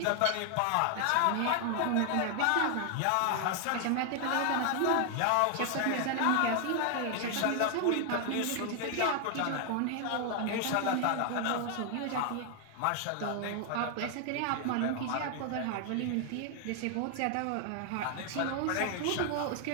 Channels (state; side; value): different; both; correlation 0.00